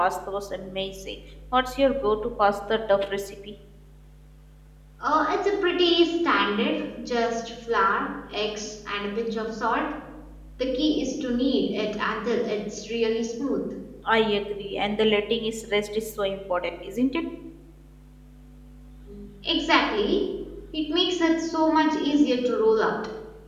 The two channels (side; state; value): both; identical; correlation 1.00